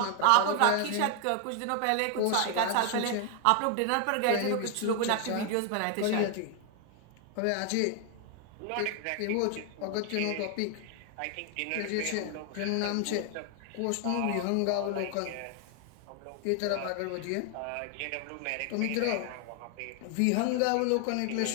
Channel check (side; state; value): both; different; correlation 0.00